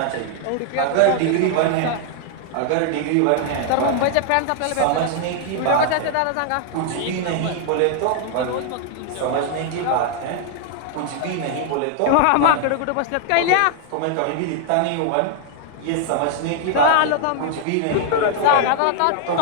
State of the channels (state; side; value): different; both; correlation 0.00